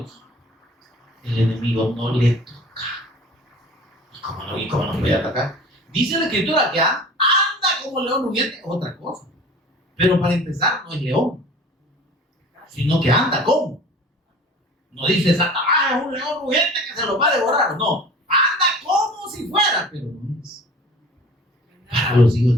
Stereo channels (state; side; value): normal; both; correlation 0.43